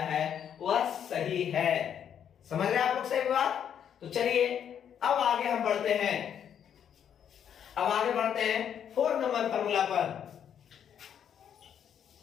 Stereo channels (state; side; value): quieter; right; 8.8 dB